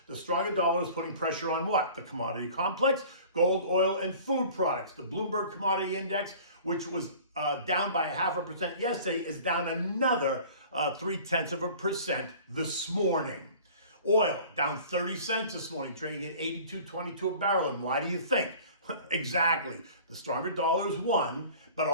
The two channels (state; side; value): inverted; both; correlation -0.45